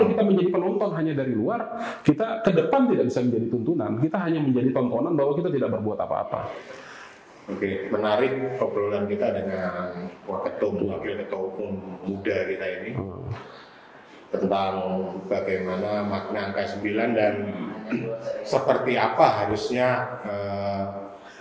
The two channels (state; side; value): identical; both; correlation 1.00